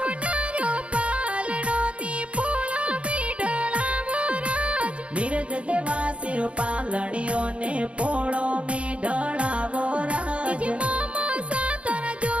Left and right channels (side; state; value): left; late; 0.061 ms